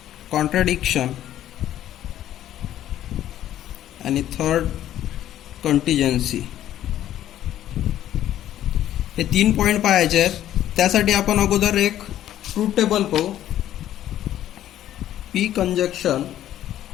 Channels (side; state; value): right; quieter; 12.2 dB